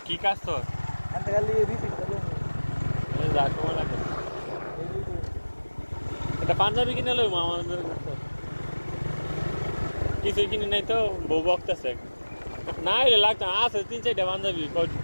কি কাজ তোর এটা পাঞ্জাবি কিনে লইব আমাদের কিছু কিনে নাই তো বউ বকতেছে না এলে লাগতো আছে 3-4টা পাঞ্জাবি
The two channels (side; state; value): both; inverted; correlation -1.00